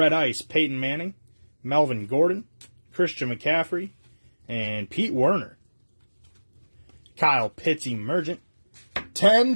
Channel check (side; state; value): both; inverted; correlation -1.00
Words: Ice Peyton Manning, Melvin Gordon, Christian McCaffrey, and Pete Werner. Kyle Pitts Emergent. 10